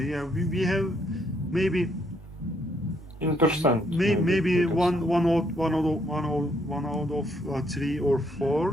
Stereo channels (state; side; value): normal; both; correlation 0.72